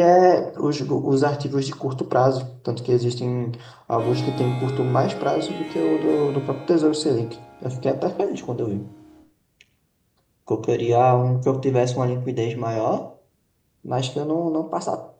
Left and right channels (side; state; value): both; identical; correlation 1.00